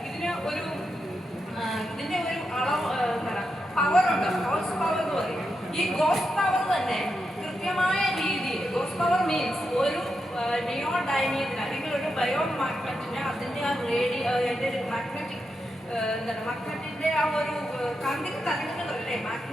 ഇതിൻ്റെ ഒരു അളവ് എന്താണ് പവറുണ്ട്, ഗോസ് പവർ എന്ന് പറയും. ഈ ഗോസ് പവർ തന്നെ കൃത്യമായ രീതിയിൽ, ഗോസ് പവർ മീൻസ് ഒരു നിയോഡൈമിയത്തിന് അല്ലെങ്കിൽ ഒരു ബയോ മാഗ്നറ്റിന് അതിൻ്റെ ആ അതിൻ്റെ ഒരു മാഗ്നറ്റിക് മാഗ്നറ്റിൻ്റെ ആ ഒരു കാന്തിക തരംഗങ്ങളല്ലേ,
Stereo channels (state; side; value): normal; both; correlation 0.86